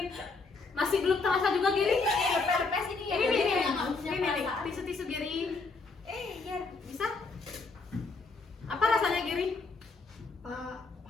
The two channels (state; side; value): quieter; right; 4.0 dB